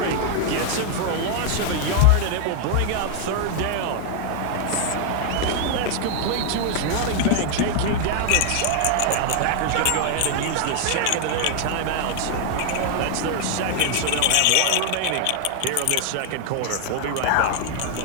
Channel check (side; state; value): both; different; correlation 0.00